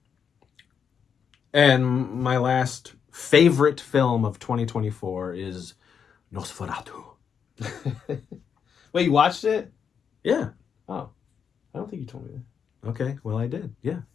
And my last favorite film of 2024 is Nosferatu. Wait, you watched it? Yeah. Oh, I don't think you told me that. Okay. Well, I did. Yeah.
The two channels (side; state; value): right; quieter; 7.2 dB